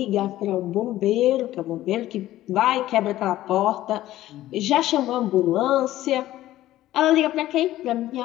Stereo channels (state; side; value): quieter; right; 14.6 dB